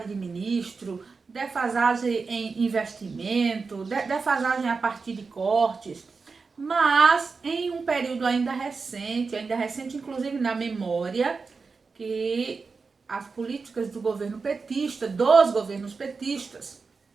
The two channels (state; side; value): quieter; left; 4.6 dB